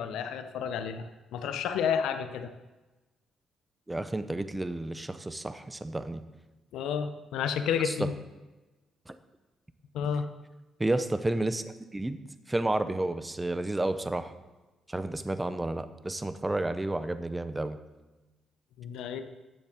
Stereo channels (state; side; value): normal; both; correlation 0.81